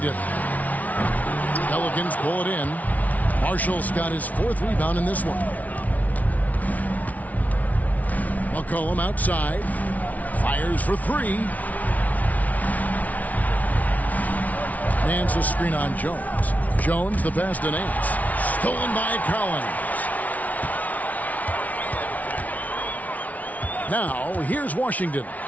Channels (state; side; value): late; right; 0.072 ms